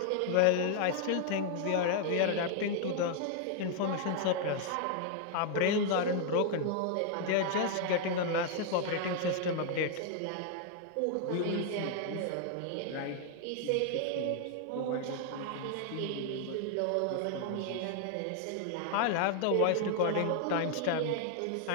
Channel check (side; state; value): both; different; correlation 0.00